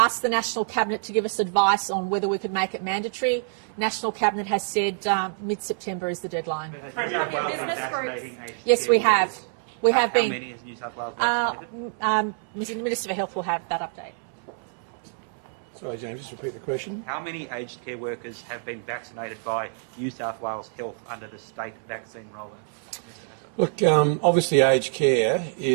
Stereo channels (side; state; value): left; silent; 61 dB below the other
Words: the National Cabinet to give us advice on whether we could make it mandatory. National Cabinet has said mid-September is the deadline. But has New South Wales been vaccinating aged Yes, care we have. workers? We have How been. many has New South Wales vaccinated? The Minister for Health will have that update. Sorry, James, just repeat the question. How many aged care workers have been vaccinated by New South Wales Health under the state vaccine rollout? Mr. Hassel. Look, obviously aged care